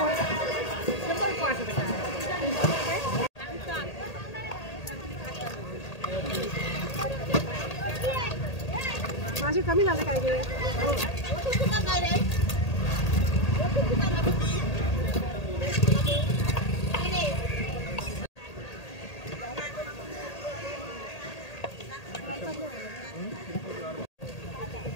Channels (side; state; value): right; late; 1.8 ms